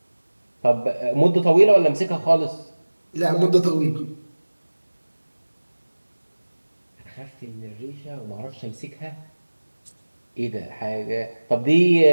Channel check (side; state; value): both; inverted; correlation -1.00